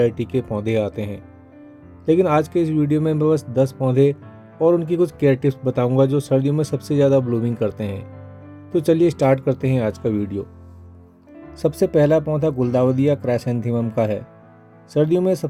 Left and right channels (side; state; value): both; identical; correlation 1.00